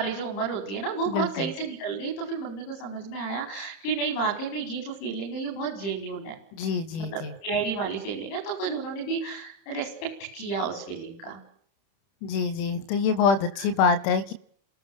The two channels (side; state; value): right; late; 31 ms